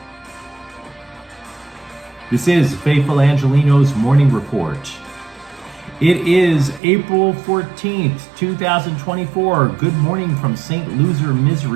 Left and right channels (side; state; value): left; drops out; at 6.8 s